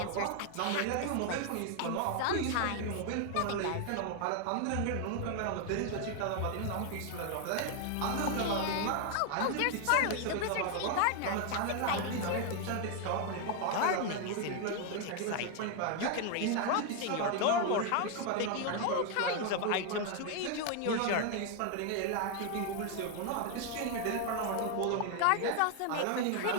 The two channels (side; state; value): both; different; correlation 0.01